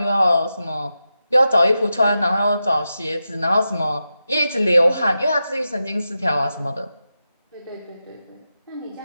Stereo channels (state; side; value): inverted; both; correlation -0.90